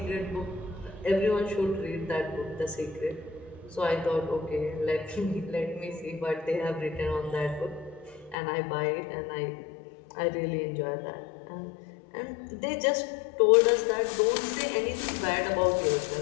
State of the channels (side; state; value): right; drops out; at 8.3 s